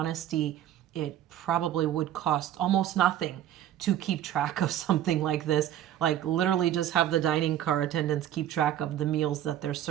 it probably would cost almost nothing to keep track of something like this. Like literally just have the dining car attendants keep track of the meals that they're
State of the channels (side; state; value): left; quieter; 11.5 dB